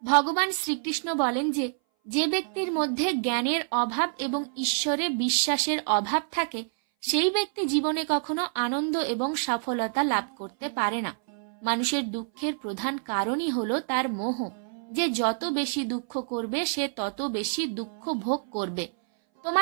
ভগবান শ্রীকৃষ্ণ বলেন যে, যে ব্যক্তির মধ্যে জ্ঞানের অভাব এবং ঈশ্বরে বিশ্বাসের অভাব থাকে সেই ব্যক্তি জীবনে কখনো আনন্দ এবং সফলতা লাভ করতে পারে না। মানুষের দুঃখের প্রধান কারণই হলো তার মোহ, যে যত বেশি দুঃখ করবে সে তত বেশি দুঃখ ভোগ করবে।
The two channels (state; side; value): silent; left; 59 dB below the other